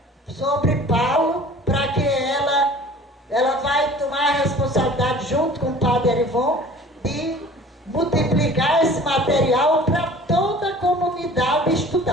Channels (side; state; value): both; normal; correlation 0.46